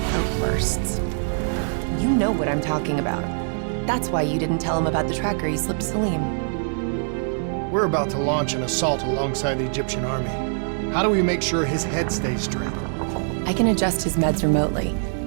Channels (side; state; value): left; silent; digital silence